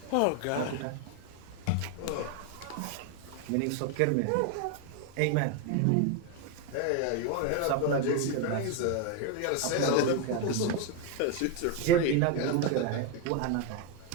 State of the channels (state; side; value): different; both; correlation 0.01